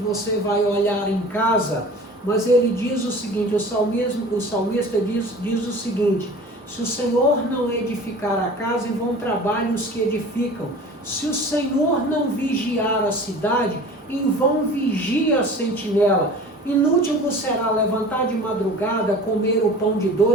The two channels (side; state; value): both; normal; correlation 0.41